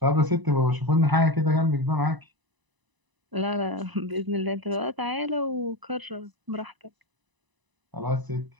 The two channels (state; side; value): late; left; 1.0 ms